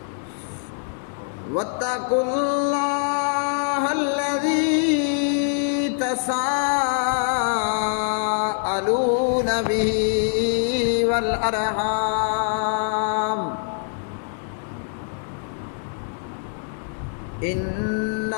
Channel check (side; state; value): right; silent; digital silence